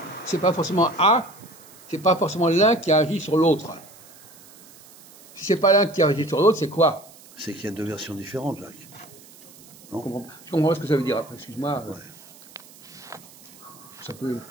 c'est pas forcément l'un qui a agi sur l'autre. Si c'est pas l'un qui a agi sur l'autre, c'est quoi? C'est qu'il y a deux versions différentes, Jacques. Non? Je comprends pas ce que ça veut dire après, excuse-moi. Ça peut.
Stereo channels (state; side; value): noise; right; hiss, 23 dB below the sound